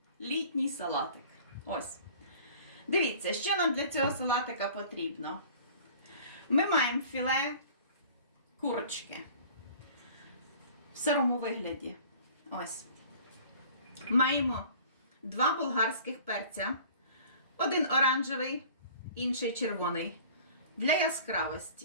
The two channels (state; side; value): inverted; both; correlation -0.47